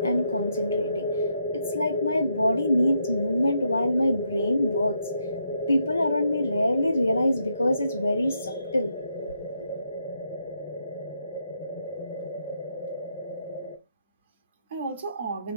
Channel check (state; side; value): inverted; both; correlation -0.78